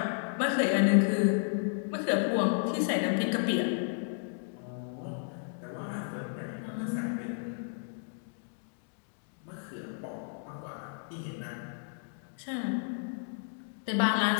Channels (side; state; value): right; silent; digital silence